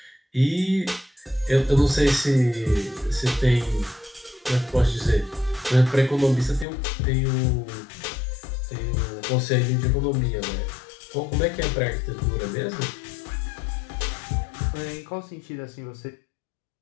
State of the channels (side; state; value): right; drops out; at 6.7 s